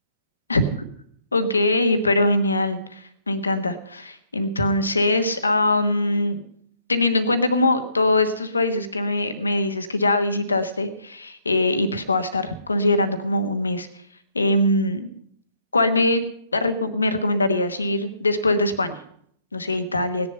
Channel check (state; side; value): inverted; both; correlation -0.69